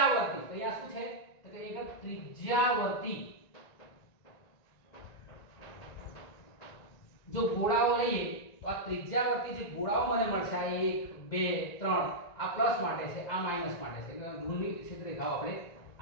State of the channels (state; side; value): late; right; 1.9 ms